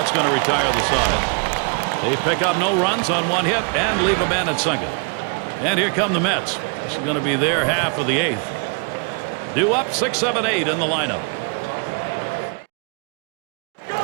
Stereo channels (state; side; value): quieter; left; 37.9 dB